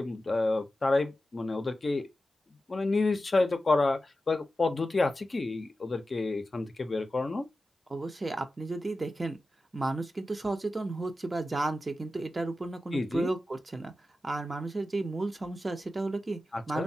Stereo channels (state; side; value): normal; both; correlation 0.93